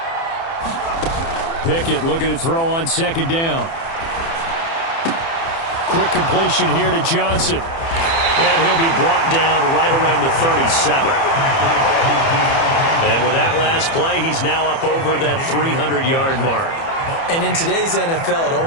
Pickett looking to throw on 2nd down. Quick completion here to Johnson. And he'll be brought down right around the 37. And with that last play, he's now up over that 300-yard mark. And in today's NFL, it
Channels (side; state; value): right; late; 30 ms